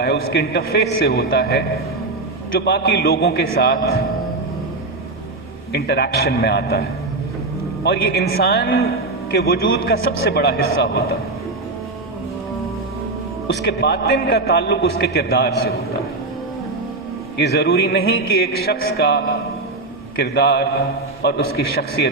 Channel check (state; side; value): quieter; left; 3.2 dB